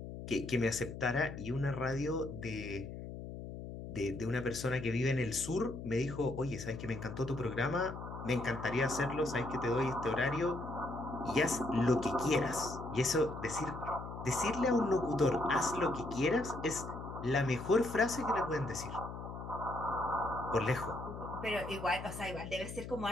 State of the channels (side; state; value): left; noise; hum, 9 dB below the sound